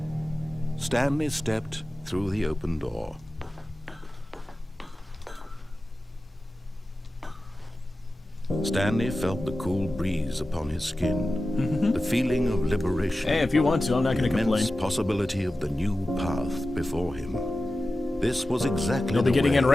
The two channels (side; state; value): both; normal; correlation 0.94